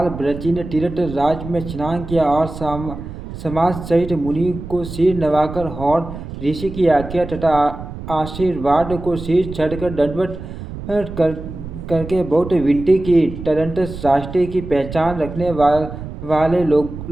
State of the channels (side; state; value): right; noise; rumble, 10 dB below the sound